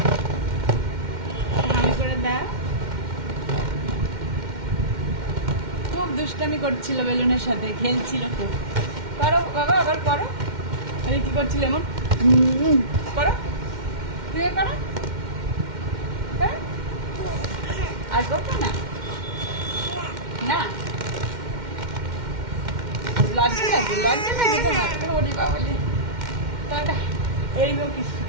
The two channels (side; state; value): left; late; 2.1 ms